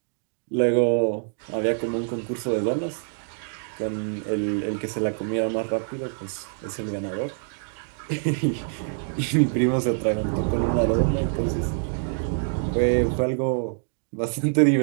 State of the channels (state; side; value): silent; left; digital silence